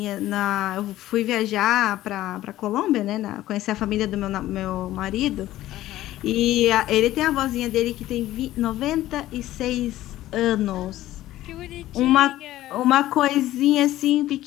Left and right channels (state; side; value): quieter; right; 14.8 dB